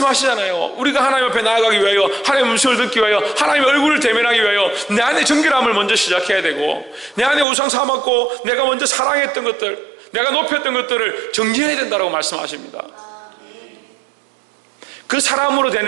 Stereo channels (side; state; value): left; drops out; at 7.5 s